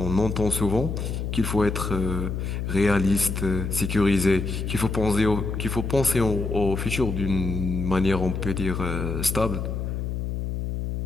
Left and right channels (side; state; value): left; noise; hum, 3 dB below the sound